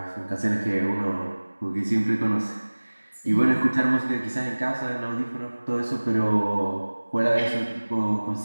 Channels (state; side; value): inverted; both; correlation -1.00